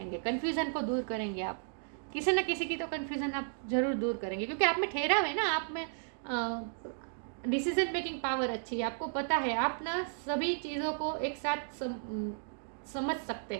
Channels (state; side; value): silent; left; digital silence